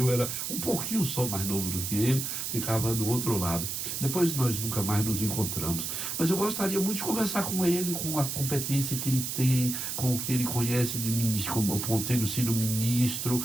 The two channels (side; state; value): right; noise; hiss, 3 dB below the sound